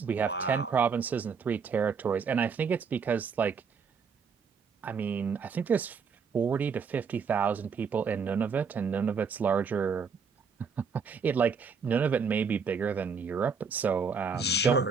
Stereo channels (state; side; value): quieter; left; 5.6 dB